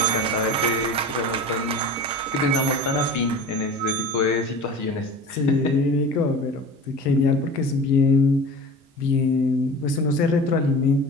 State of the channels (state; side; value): normal; both; correlation 0.36